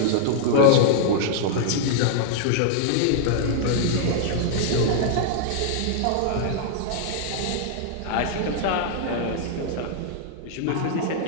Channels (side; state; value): both; different; correlation -0.01